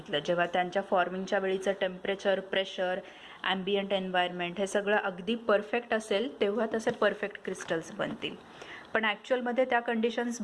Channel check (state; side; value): identical; both; correlation 1.00